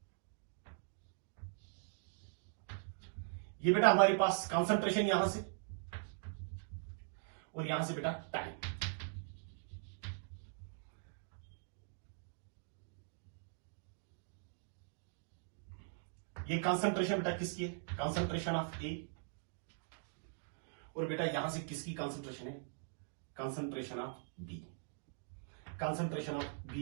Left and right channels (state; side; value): silent; left; digital silence